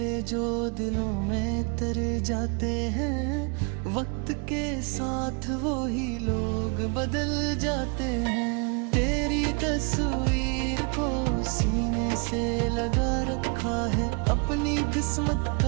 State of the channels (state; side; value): quieter; left; 34.8 dB